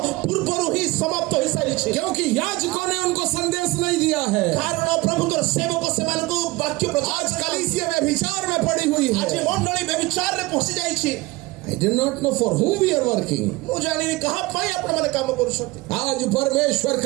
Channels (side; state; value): left; quieter; 21.4 dB